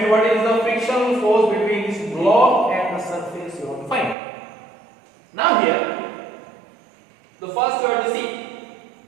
what is the frictional force between this block and the surface you want to find? Now here, the first you have to see.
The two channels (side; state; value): left; drops out; at 4.2 s